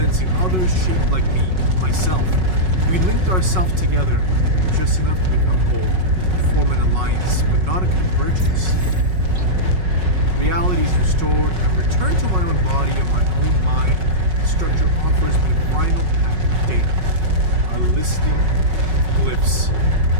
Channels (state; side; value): late; left; 5.4 ms